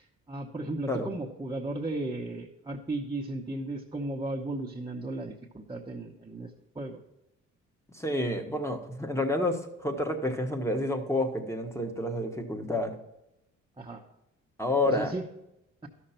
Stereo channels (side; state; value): both; normal; correlation 0.47